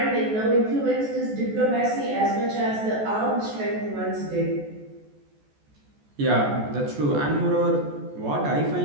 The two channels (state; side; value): late; left; 14 ms